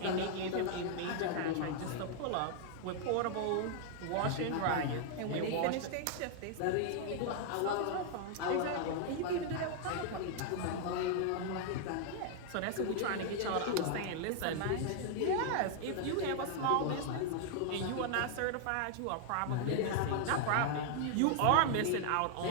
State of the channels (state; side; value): different; both; correlation 0.00